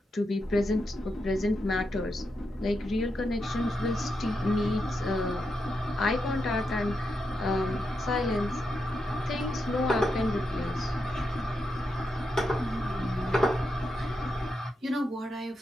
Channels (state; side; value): normal; both; correlation 0.85